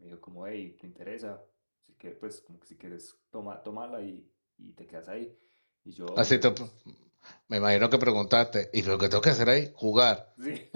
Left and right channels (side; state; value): both; inverted; correlation -1.00